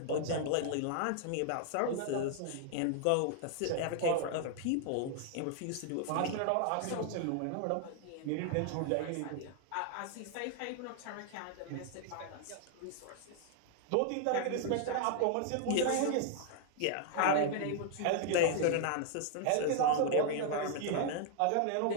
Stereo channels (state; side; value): different; both; correlation 0.00